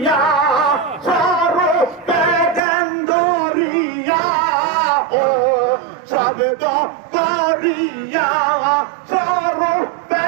সরস পেগেন্দরিয়া ও সাবেদ করিয়া সরস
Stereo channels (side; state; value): left; drops out; at 2.6 s